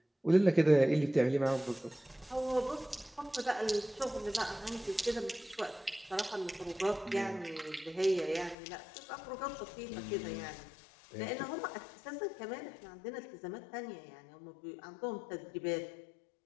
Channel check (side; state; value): right; drops out; at 8.6 s